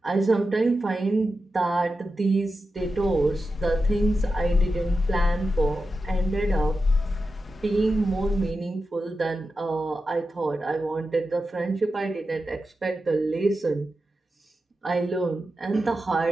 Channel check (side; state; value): both; normal; correlation 0.91